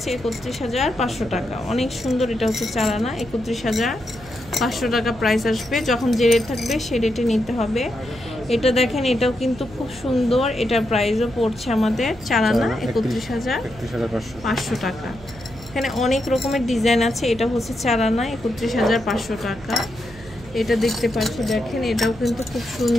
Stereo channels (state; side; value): noise; right; hum, 19 dB below the sound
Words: 31500 টাকা। অনেক সুন্দর। এটা হচ্ছে 4 আনা, 31500 টাকা প্রাইস আসবে। যখন যে রেট থাকবে সেই রেটে নিতে হবে। এটা দেখেন, এটাও কিন্তু খুব সুন্দর। এটার প্রাইসও পড়ছে আমাদের 4 আনা 31500 টাকা। এখানে অনেক রকমের ডিজাইন আছে। এটা হচ্ছে 4 আনা 31500 টাকা। এটা দেখতে পাচ্ছি, দেখেন এটাও কিন্তু খুব